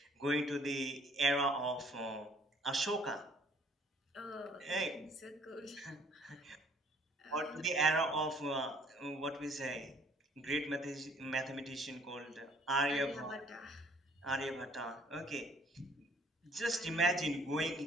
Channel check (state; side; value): normal; both; correlation 0.59